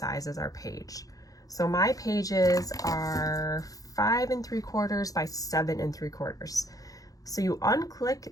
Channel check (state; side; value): late; right; 0.17 ms